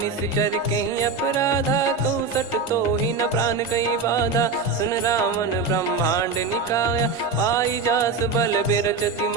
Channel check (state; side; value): quieter; left; 4.3 dB